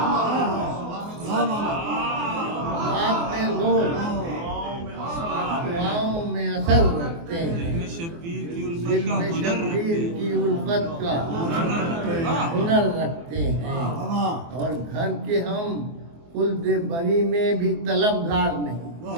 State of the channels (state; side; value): late; left; 24 ms